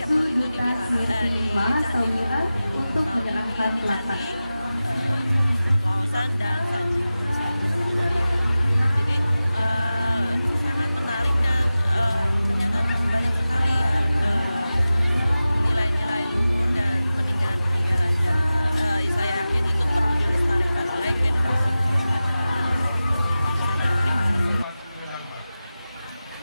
tahun itu di Candi untuk menyerahkan di Candi Kawasan dan Sanjiwa. Jadi sangat menarik dan ternyata banyak sekali ya nilai-nilai luhur dan peninggalan-peninggalan, dan saya yakin itu perlu dilestarikan oleh generasi muda. Terima kasih.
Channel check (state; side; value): inverted; both; correlation -0.95